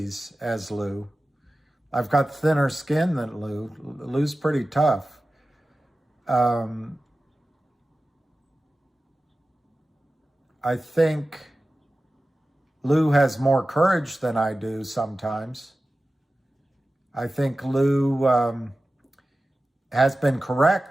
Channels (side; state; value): both; normal; correlation 0.95